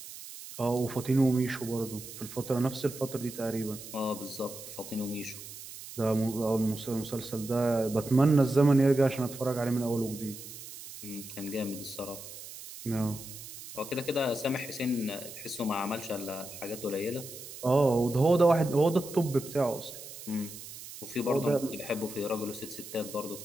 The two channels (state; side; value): noise; right; hiss, 13 dB below the sound